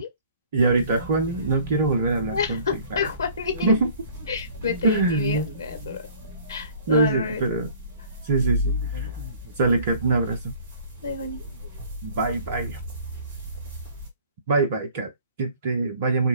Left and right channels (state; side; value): inverted; both; correlation -0.52